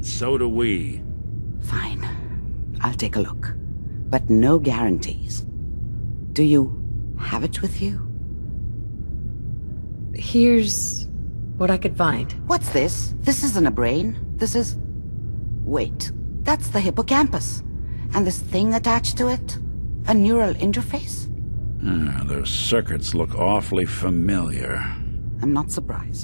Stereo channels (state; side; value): inverted; both; correlation -1.00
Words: so do we. Fine. I'll take a look. But no guarantees. Do you have it with you? Here's What I could find. What's this? This isn't a brain. This is... Wait, that's the hippocampus. And this thing attached to it? A neural interface? Those circuits look awfully familiar. I'm not